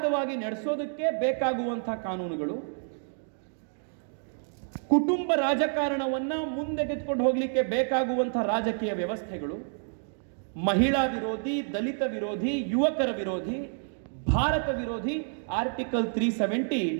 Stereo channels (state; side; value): silent; left; 59 dB below the other